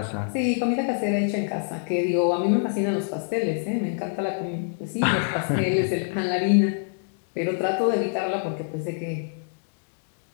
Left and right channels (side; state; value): right; silent; 61 dB below the other